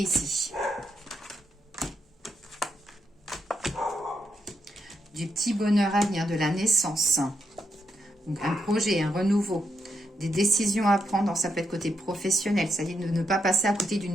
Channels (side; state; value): both; normal; correlation 0.81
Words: ici. Du petit bonheur à venir, de la naissance. Donc un projet, un renouveau. Des décisions à prendre, ça peut être côté professionnel, c'est-à-dire de ne pas passer à côté